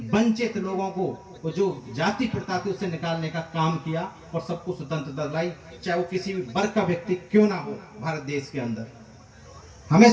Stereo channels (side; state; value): both; identical; correlation 1.00